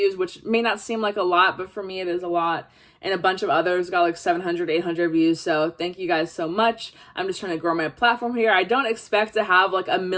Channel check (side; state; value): both; identical; correlation 1.00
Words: which may not seem like a lot, but for me it is a lot. And a bunch of others got like 700, 800 views. So thank you guys so much. I'm just trying to grow my platform here. I don't expect to have like 1